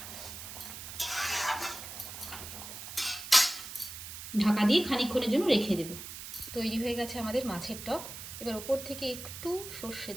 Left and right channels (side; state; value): right; noise; hiss, 10 dB below the sound